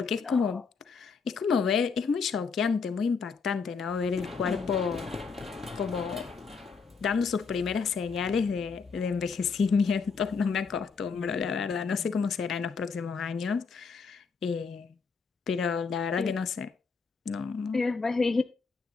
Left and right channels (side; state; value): right; quieter; 5.2 dB